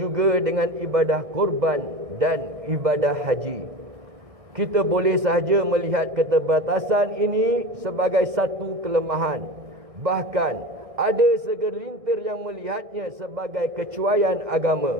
dengan ibadah korban dan ibadah haji. Kita boleh sahaja melihat keterbatasan ini sebagai satu kelemahan. Bahkan ada segelintir yang melihatnya sebagai kecuaian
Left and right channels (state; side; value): late; left; 1.6 ms